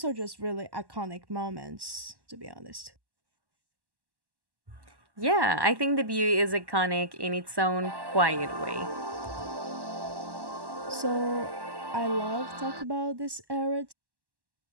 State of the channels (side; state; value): left; late; 1.1 ms